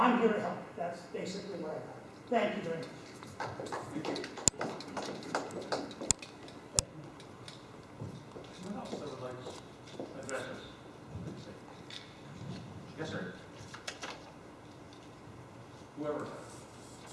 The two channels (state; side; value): identical; both; correlation 1.00